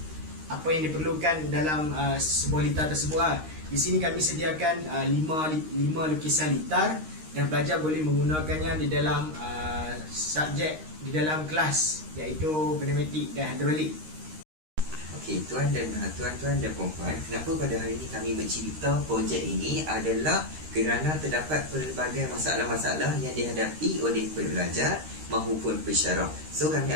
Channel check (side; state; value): left; late; 13 ms